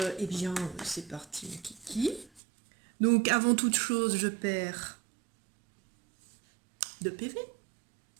bien, c'est parti, mon kiki. Donc, avant toute chose, je perds 2 PV.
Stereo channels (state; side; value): drops out; left; at 2.4 s